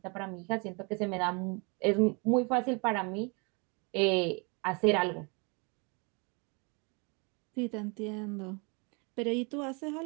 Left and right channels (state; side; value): quieter; left; 32.0 dB